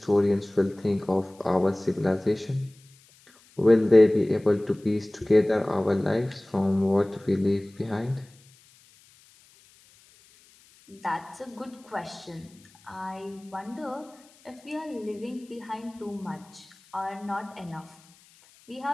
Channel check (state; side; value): noise; left; hiss, 28 dB below the sound